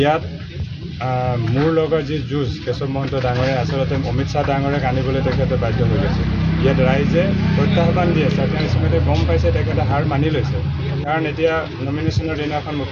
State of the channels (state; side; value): identical; both; correlation 1.00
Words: মোৰ লগত যি যুঁজ কেশৱ মহন্ত ডাঙৰে আচলতে অমিত শ্বাহ ডাঙৰক আনিবলৈ তেখেতে বাধ্য হৈ গৈছে। ইয়াত ৰাইজে প্ৰত্যাহ্বান দি আছে, তেওঁ ইতিমধ্যে গম পাইছে তেখেতে হাৰ মানি লৈছে। কাৰণ এতিয়া নমিনেশ্যনৰ দিনাখন